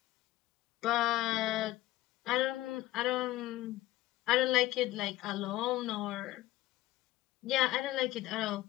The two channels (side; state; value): right; quieter; 16.3 dB